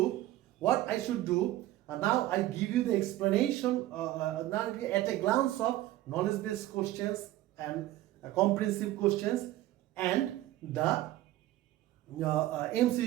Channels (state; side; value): quieter; left; 15.3 dB